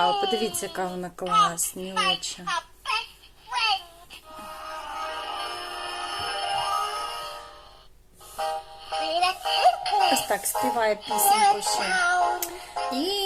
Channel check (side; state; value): both; identical; correlation 1.00